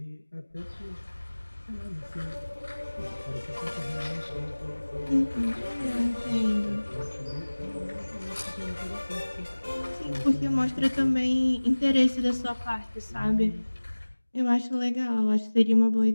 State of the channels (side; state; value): both; inverted; correlation -1.00